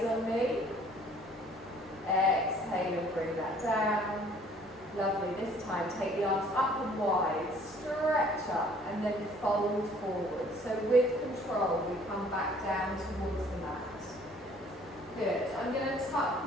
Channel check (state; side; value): normal; both; correlation 0.56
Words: on me. Exhale and bring that down. Lovely. This time, take the arms up and wide, stretch up and then fold forward. So with control, we come back down towards the mat. Good. I'm going to tuck